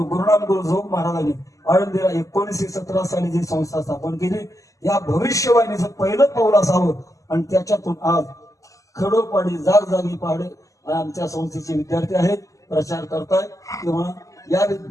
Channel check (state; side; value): late; right; 0.16 ms